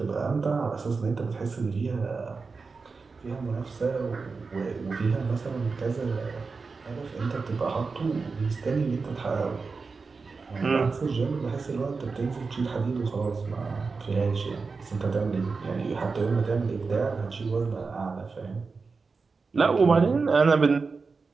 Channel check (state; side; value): quieter; left; 4.5 dB